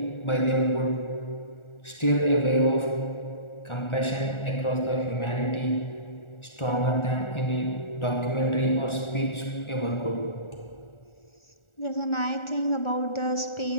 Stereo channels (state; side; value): late; right; 1.4 ms